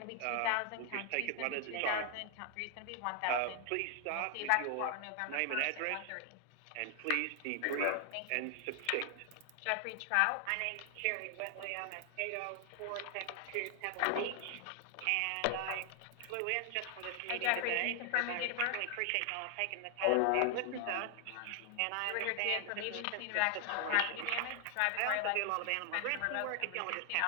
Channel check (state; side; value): different; both; correlation 0.00